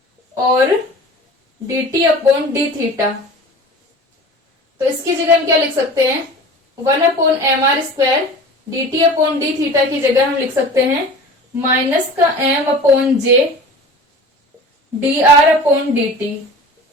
और D T upon D theta. तो इसकी जगह हम क्या लिख सकते हैं, one upon M are square D T upon D theta की जगह हम लिख सकते हैं माइनस का M upon J D are upon D T.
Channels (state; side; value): normal; both; correlation 0.39